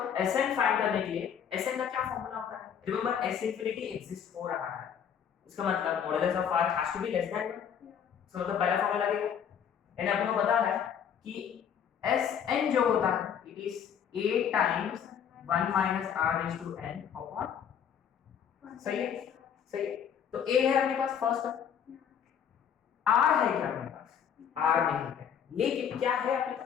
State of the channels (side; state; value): right; quieter; 8.2 dB